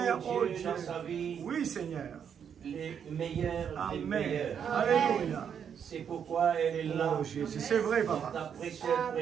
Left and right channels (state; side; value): quieter; left; 7.8 dB